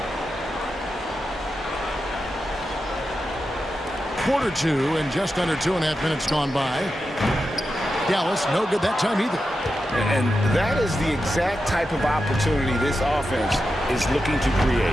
Quarter 2 and just under 2.5 minutes gone by. Dallas no good that time either. And that is the exact type of opportunity this offense is looking to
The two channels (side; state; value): both; normal; correlation 0.89